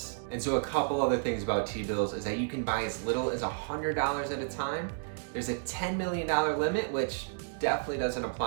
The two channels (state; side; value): silent; left; digital silence